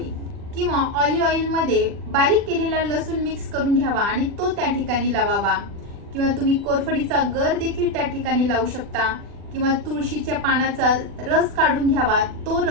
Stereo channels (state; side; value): late; left; 40 ms